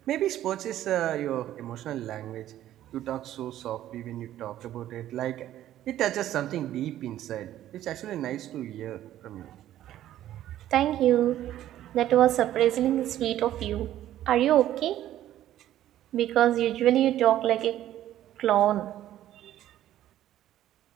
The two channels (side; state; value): left; quieter; 12.7 dB